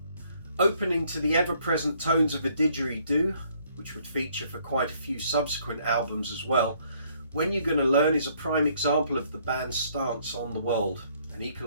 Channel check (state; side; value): inverted; both; correlation -0.65